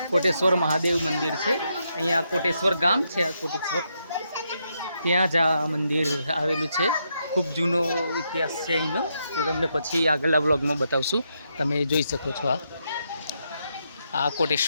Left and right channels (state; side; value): inverted; both; correlation -0.80